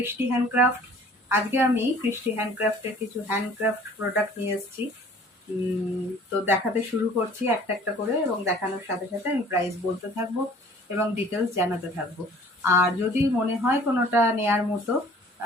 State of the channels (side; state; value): both; normal; correlation 0.51